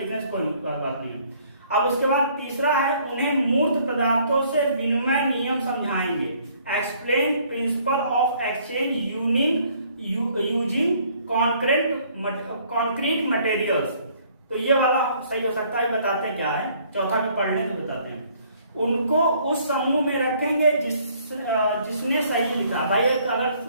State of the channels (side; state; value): both; inverted; correlation -0.61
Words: से कोई बात नहीं है। अब उसके बाद तीसरा है, उन्हें मूर्त पदार्थों से विनिमय नियम समझाएंगे। Explain principle of exchange using concrete materials. तो ये वाला सही हो सकता है, बताते हैं क्या है, चौथा भी पढ़ लें तो बताते हैं। उनको उस समूह में रखेंगे जिसने सही लिखा। भाई